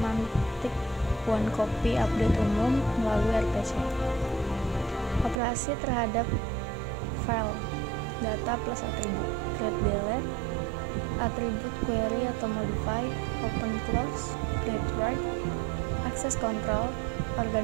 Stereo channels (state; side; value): drops out; left; at 5.4 s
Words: one copy update umum melalui RPC. Operasi terhadap file, data plus atribut, create delete, atribut query atau modify, open close, create write, access control,